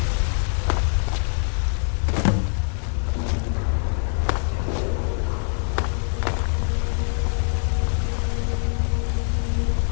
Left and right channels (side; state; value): right; silent; 57 dB below the other